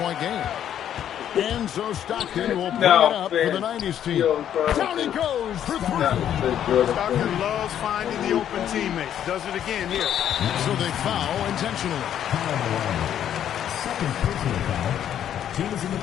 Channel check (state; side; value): quieter; right; 10.2 dB